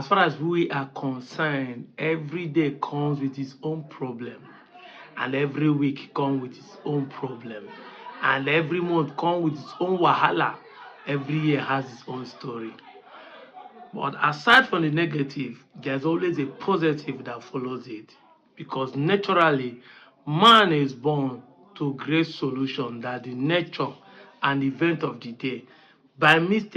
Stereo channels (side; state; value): both; identical; correlation 1.00